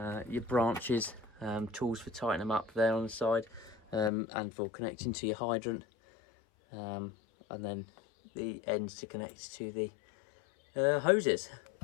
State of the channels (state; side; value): drops out; right; at 4.1 s